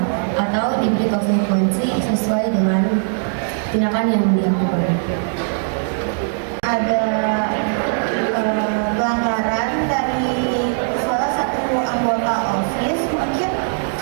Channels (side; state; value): left; silent; digital silence